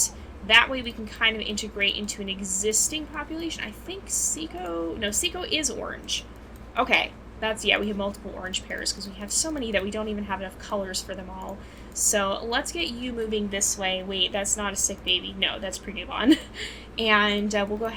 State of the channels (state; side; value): identical; both; correlation 1.00